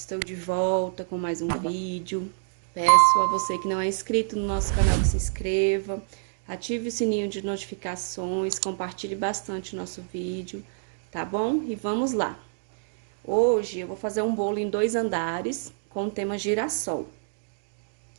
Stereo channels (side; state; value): left; silent; digital silence